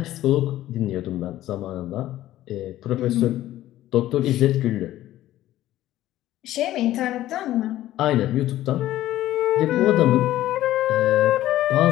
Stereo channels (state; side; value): quieter; right; 14.2 dB